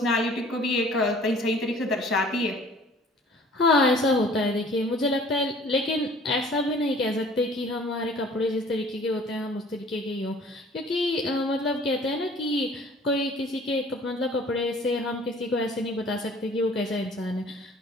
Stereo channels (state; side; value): normal; both; correlation 0.51